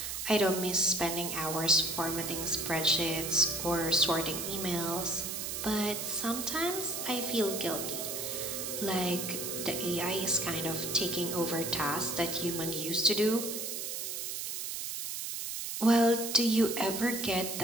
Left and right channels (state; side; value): noise; right; hiss, 4 dB below the sound